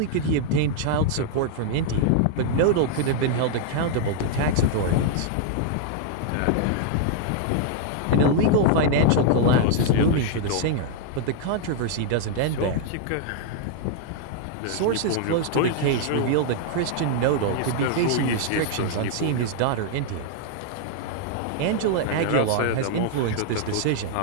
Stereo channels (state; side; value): different; both; correlation 0.00